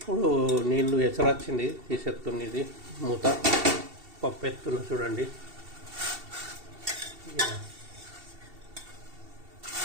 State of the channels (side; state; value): left; late; 2.7 ms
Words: నీళ్ళు ఎసరు వచ్చింది, తీసేస్తుంది. మూత పప్పు ఎత్తున్నా చూడండి.